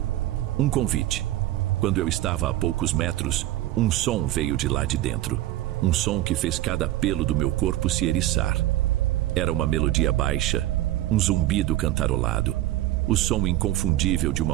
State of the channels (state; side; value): quieter; left; 14.9 dB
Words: Um convite. Quando eu estava a poucos metros, um som veio de lá de dentro. Um som que fez cada pelo do meu corpo se eriçar. Era uma melodia baixa, um zumbido cantarolado. O som inconfundível de